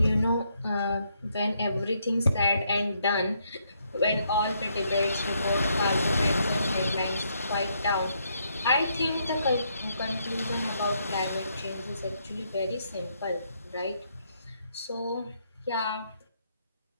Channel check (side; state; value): both; inverted; correlation -0.74